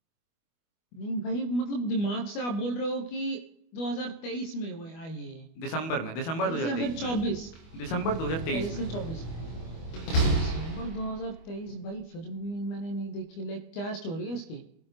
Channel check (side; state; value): right; late; 25 ms